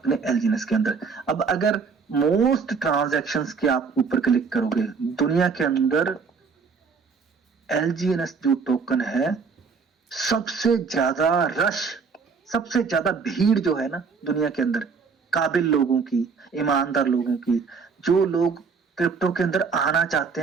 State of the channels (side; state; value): left; quieter; 5.3 dB